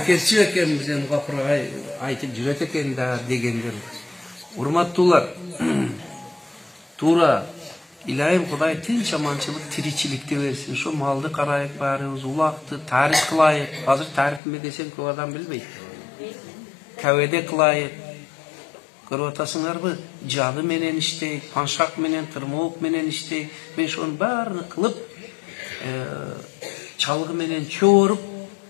экенбиз, эми капырга айтып жүрөт экен да дегендер. Урматтуулар, туура Илайым Кудай тынч аманчылык, тиричиликти берсин. Ошо малды карайык баарыбыз, улакты тарих кылайык. Азыр тарихме десем көп адам билбейт. Кәведе кылайык. Көрүп атасыңарбы? Жады менен иштейт, паншак менен, тырмоок менен иштейт. Мен ошонун баарын кылып, чалгы менен чооруп,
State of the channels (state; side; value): drops out; right; at 14.4 s